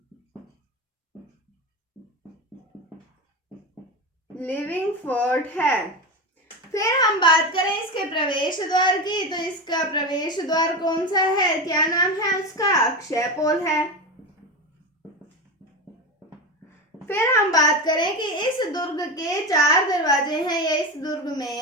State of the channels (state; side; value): normal; both; correlation 0.20